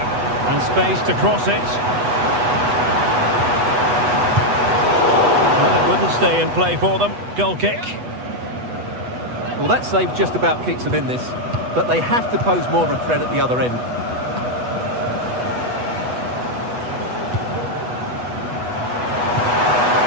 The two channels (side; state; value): left; late; 8.2 ms